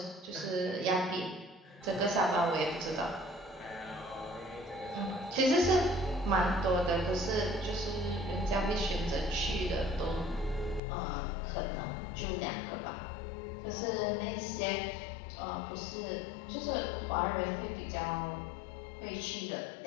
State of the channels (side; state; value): right; drops out; at 10.8 s